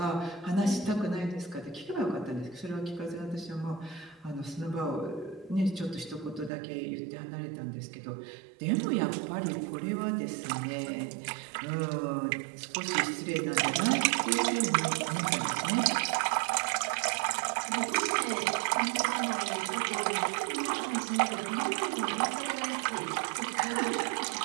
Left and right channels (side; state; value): left; drops out; at 6.5 s